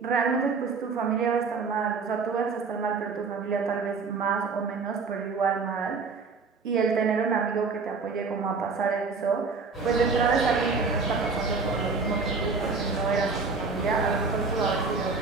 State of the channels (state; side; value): quieter; left; 4.6 dB